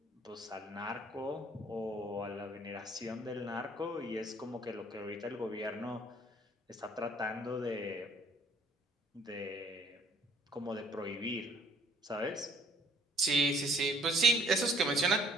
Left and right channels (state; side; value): normal; both; correlation 0.59